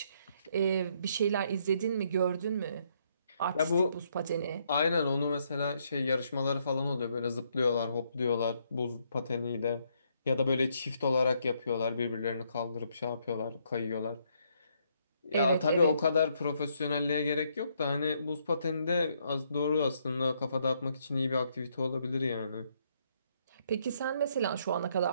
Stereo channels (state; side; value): inverted; both; correlation -0.72